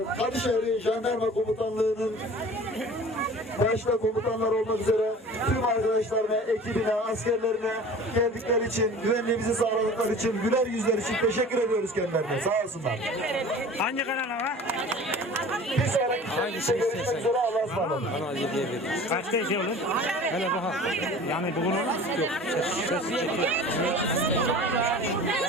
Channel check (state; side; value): normal; both; correlation 0.42